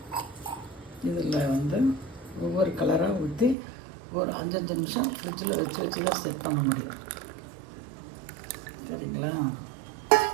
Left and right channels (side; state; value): left; drops out; at 3.6 s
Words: இதில் வந்து ஒவ்வொரு கலராக ஊற்றி ஒரு 5 நிமிஷம் ஃப்ரிட்ஜில் வச்சு தான் செட் பண்ண முடியும். சரிங்களா?